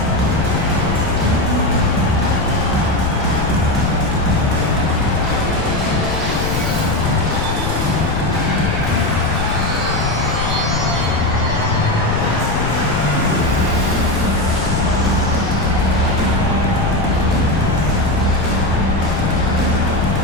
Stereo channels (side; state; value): left; noise; rumble, 3 dB below the sound